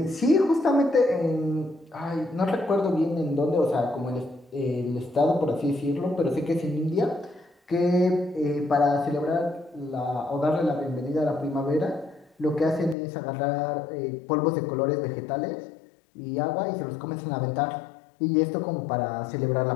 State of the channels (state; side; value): drops out; right; at 13.0 s